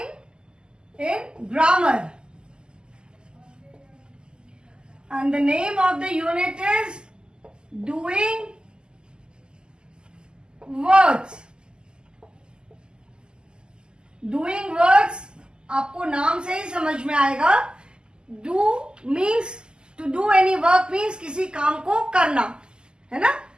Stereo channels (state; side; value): late; left; 0.047 ms